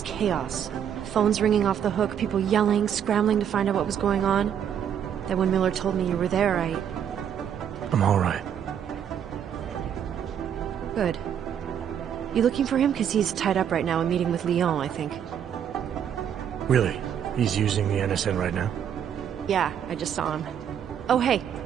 chaos. Phones ringing off the hook, people yelling, scrambling to find out what was going on. Then when Miller told me you were there, I'm all right. Good. You looking for him? Because he's tied up right now and meeting with Leon, I think. Really? He's using the NSN right now? Yeah, I just saw him. Oh, hey,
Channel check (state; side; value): quieter; left; 8.9 dB